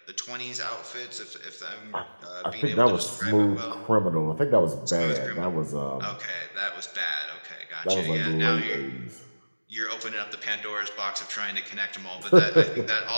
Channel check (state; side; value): inverted; both; correlation -1.00